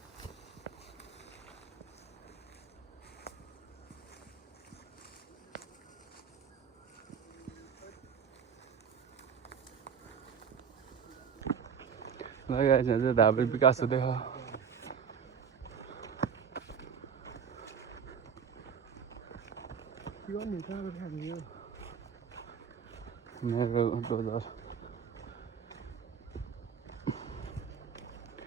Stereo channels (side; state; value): left; quieter; 7.0 dB